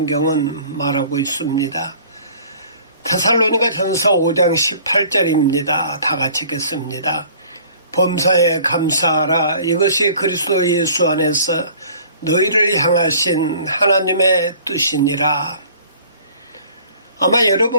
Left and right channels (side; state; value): both; inverted; correlation -0.51